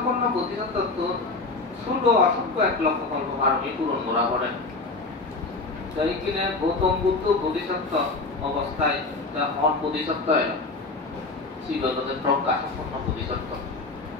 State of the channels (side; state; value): right; quieter; 3.5 dB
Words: বোধিসত্ত্ব ষোলো অসংখ্য 1 লক্ষ কল্প পারমিক পূরণ করা করে। এইখানে গৌতম বুদ্ধ বোধিসত্ত্ব অবস্থায় বোধিসত্ত্ব এলো শ্রীগতদের প্রজ্ঞা সম্পন্ন বোধিসত্ত্ব,